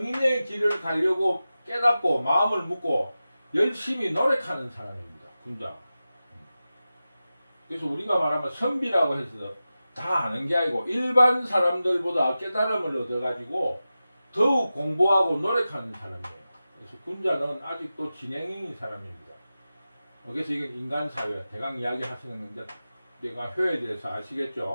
길을 가려고 깨닫고 마음을 묻고 열심히 노력하는 사람입니다. 군자. 그래서 우리가 말하면 선비라고 해서 다 아는 게 아니고 일반 사람들보다 깨달음을 얻어가지고 더욱 공부하고 노력하는 사람이에요. 그래서 군자는 아직도 진행형인 사람입니다. 그래서 이건 인간사회, 대강 이야기 하시는 건데 내가 효에 대해서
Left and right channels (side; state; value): both; inverted; correlation -0.94